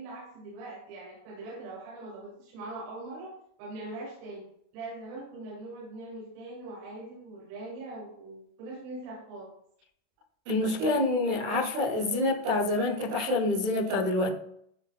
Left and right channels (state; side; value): late; left; 32 ms